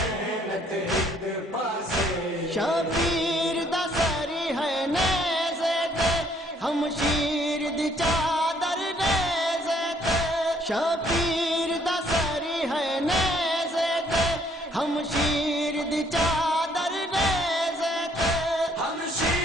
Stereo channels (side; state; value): both; normal; correlation 0.64